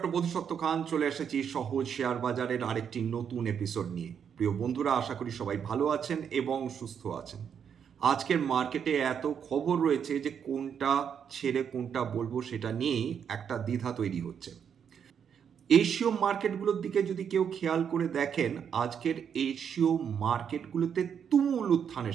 বোধিসত্ত্ব খান চলে এসেছি সহজ শেয়ার বাজারের আরেকটি নতুন এপিসোড নিয়ে। প্রিয় বন্ধুরা, আশা করি সবাই ভালো আছেন এবং সুস্থ আছেন। আজকের মার্কেটে এত খবর রয়েছে যে কোনটা ছেড়ে কোনটা বলবো সেটা নিয়েই একটা দ্বিধা তৈরি হচ্ছে। এশীয় মার্কেটগুলোর দিকে যদি কেউ খেয়াল করে দেখেন, আজকের এশীয় মার্কেটগুলোতে তুমুল উত্থান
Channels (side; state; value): left; quieter; 7.7 dB